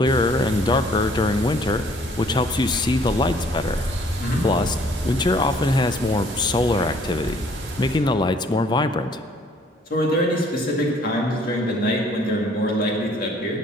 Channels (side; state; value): both; normal; correlation 0.59